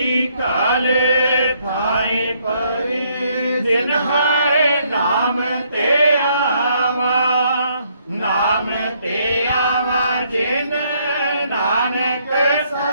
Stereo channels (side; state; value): both; inverted; correlation -0.69